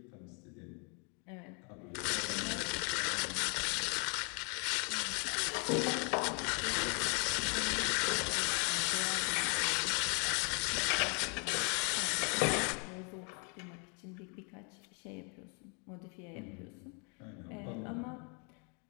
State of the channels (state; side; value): quieter; right; 36.8 dB